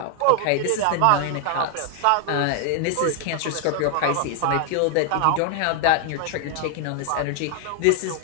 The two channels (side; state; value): both; different; correlation 0.00